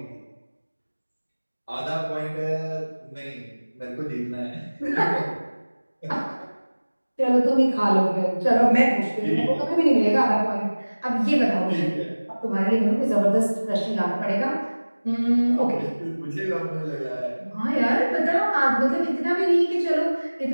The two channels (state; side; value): inverted; both; correlation -1.00